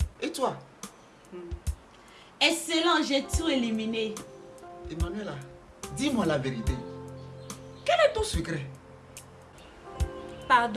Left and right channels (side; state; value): both; identical; correlation 1.00